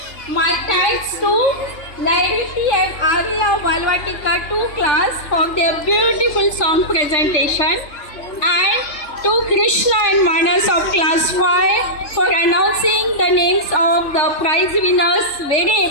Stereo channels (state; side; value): late; right; 3.4 ms